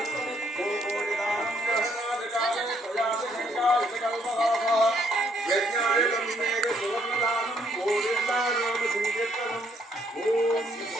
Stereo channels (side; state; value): both; normal; correlation 0.70